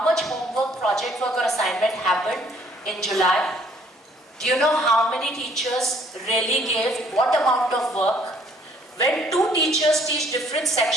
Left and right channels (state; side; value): normal; both; correlation 0.61